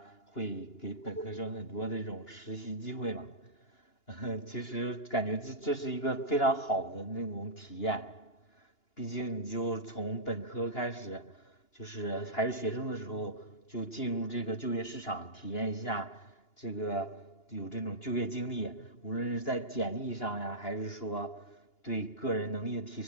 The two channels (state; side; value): late; right; 2.9 ms